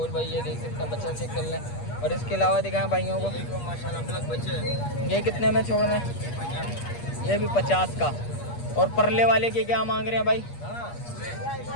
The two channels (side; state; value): right; late; 8.4 ms